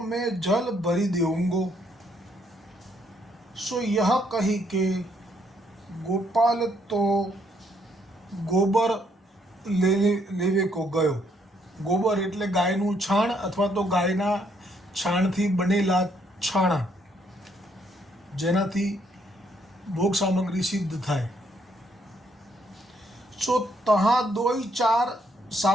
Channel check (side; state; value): both; normal; correlation 0.71